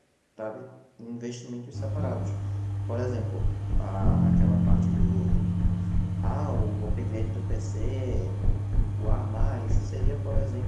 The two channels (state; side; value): identical; both; correlation 1.00